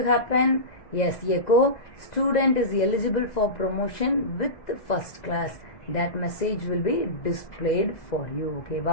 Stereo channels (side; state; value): right; late; 2.0 ms